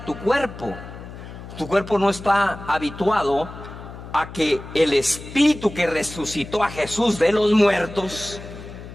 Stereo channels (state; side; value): noise; left; hum, 13 dB below the sound